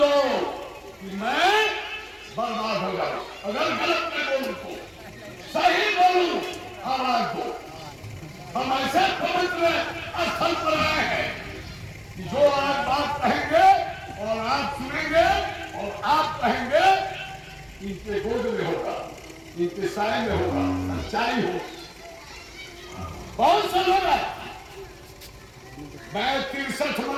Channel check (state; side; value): identical; both; correlation 1.00